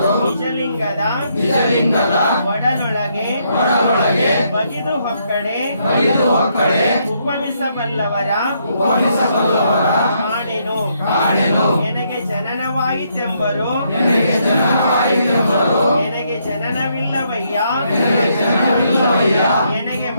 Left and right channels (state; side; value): inverted; both; correlation -0.74